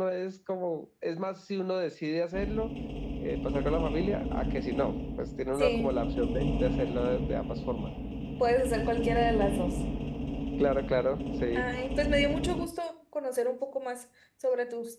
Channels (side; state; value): both; identical; correlation 1.00